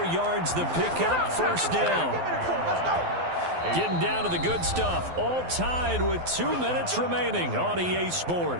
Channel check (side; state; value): left; late; 12 ms